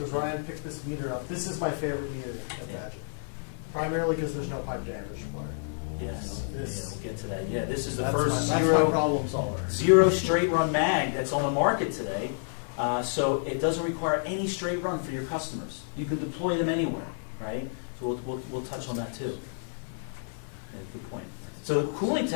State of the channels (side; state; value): right; silent; digital silence